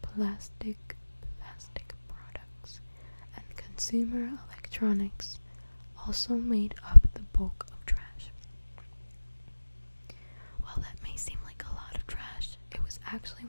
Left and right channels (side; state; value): both; inverted; correlation -1.00